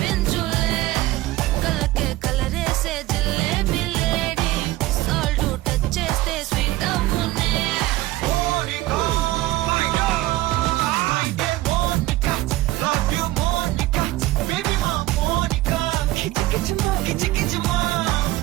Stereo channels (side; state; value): left; quieter; 17.4 dB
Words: కళ్ళకే కలరేసే జిల్లేబీ లేడీ సాల్ట్ టచ్ చేస్తే స్వీట్ అవునే